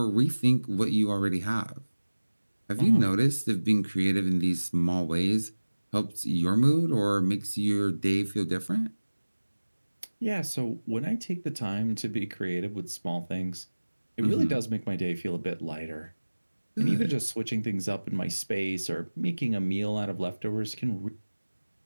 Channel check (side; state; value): both; inverted; correlation -1.00